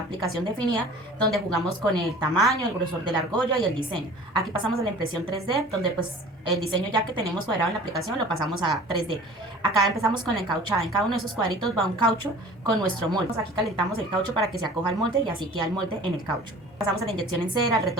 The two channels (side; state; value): both; normal; correlation 0.44